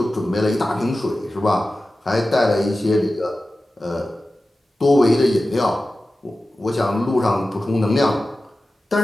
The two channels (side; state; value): both; normal; correlation 0.95